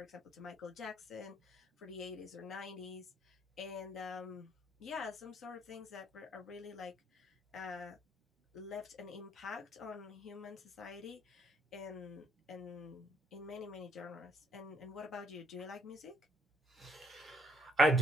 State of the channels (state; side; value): normal; both; correlation 0.67